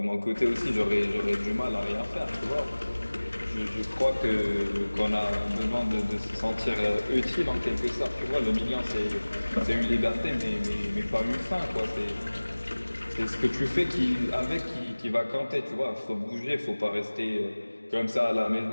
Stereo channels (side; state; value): both; inverted; correlation -1.00